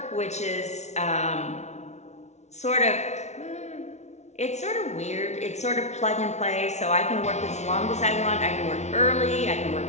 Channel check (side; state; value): right; late; 0.32 ms